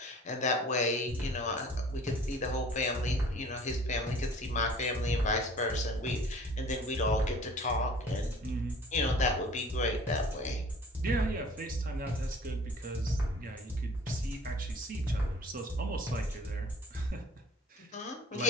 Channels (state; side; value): normal; both; correlation 0.48